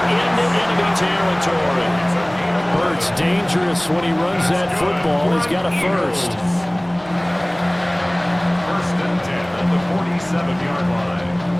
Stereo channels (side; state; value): left; noise; hum, 28 dB below the sound